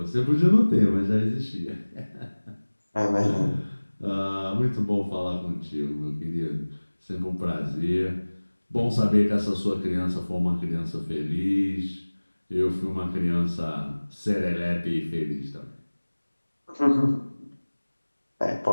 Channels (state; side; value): inverted; both; correlation -1.00